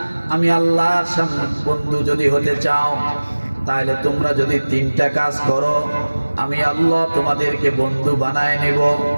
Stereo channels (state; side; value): inverted; both; correlation -1.00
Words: আমি আল্লাহর সামনে বন্ধু যদি হতে চাও, তাহলে তোমরা যদি 3টা কাজ করো, আমি আল্লাহ তোমাদেরকে বন্ধু বানায় নেব।